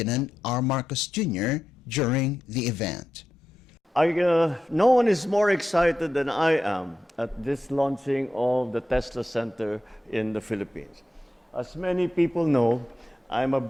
R. Marcos Jr. during the event. No one is more excited than I am at this launching of the Tesla Center in the Philippines. As many people know, I'm a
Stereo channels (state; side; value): normal; both; correlation 0.88